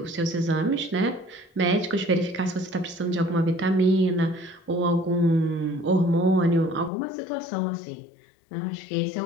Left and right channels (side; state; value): right; drops out; at 6.9 s